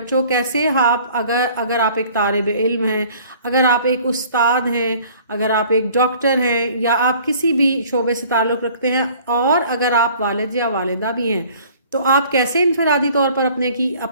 کیسے اگر آپ ایک طالب علم ہیں، اگر آپ ایک استاد ہیں، اگر آپ ایک ڈاکٹر ہیں یا آپ کسی بھی شعبے سے تعلق رکھتے ہیں اور اگر آپ والد یا والدہ بھی ہیں، تو آپ کیسے انفرادی طور پر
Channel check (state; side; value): inverted; both; correlation -0.52